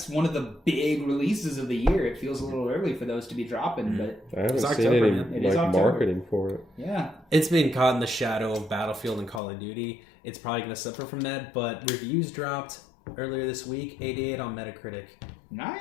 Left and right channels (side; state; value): right; drops out; at 9.4 s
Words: of the big releases of the year. It feels a little early for those to be dropping, but I haven't It's seen October, any man. It is like October. marketing for it. yeah. It's been caught in the shadow of Battlefield and Call of Duty. It's probably going to suffer from that, but reviews dropped earlier this week, 88 on Metacritic.